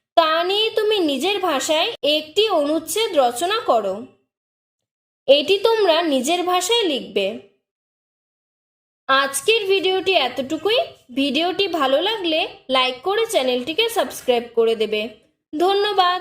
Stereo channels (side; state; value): both; identical; correlation 1.00